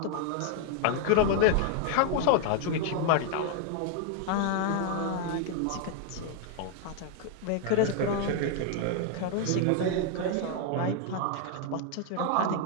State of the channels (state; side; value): different; both; correlation 0.00